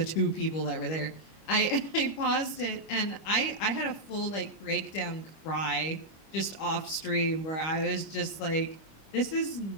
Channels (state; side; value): late; right; 25 ms